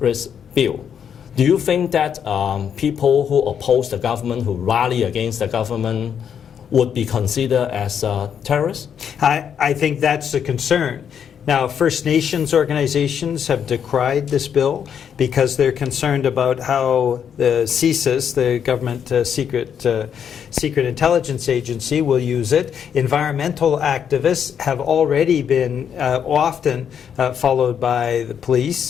bill, do you think that people who oppose the government, who rally against the government, would be considered as terrorists? I think that's a concern. Now, First Nations organizations have decried this bill because they're concerned about how the CSIS, the government secret intelligence agency, will use it. Environmental activists have already been often followed by the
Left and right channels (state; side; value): quieter; right; 8.1 dB